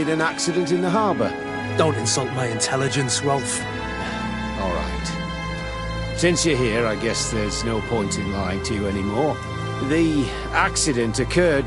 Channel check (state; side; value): identical; both; correlation 1.00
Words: an accident in the harbour. Don't insult my intelligence, Rolf. All right. Since you're here, I guess there's no point in lying to you anymore. The accident occurred